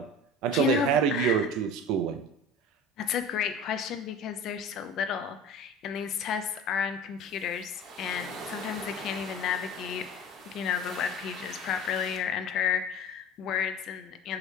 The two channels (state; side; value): normal; both; correlation 0.37